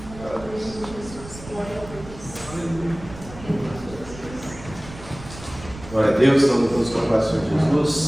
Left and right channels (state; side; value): noise; right; rumble, 15 dB below the sound